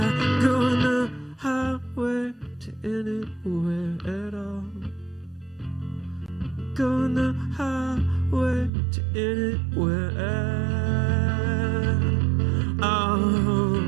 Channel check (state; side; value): drops out; left; at 8.7 s